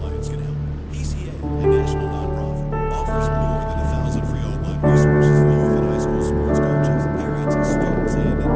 can help. PCA, a national nonprofit, offers more than 1,000 free online resources for youth and high school sports coaches, parents, students, and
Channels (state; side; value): identical; both; correlation 1.00